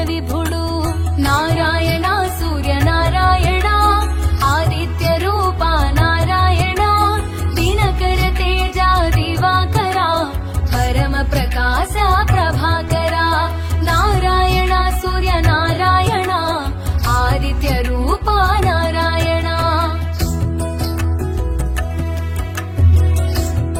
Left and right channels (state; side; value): identical; both; correlation 1.00